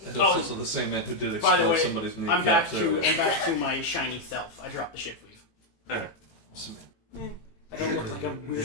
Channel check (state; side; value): late; right; 18 ms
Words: That's also the same man who did By the explode way, somebody's kneecap. I'm back to my shiny self. I dropped the shift weave. Eh. I don't look like a